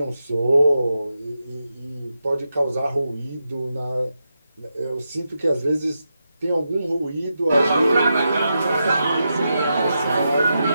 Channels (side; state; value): both; inverted; correlation -0.87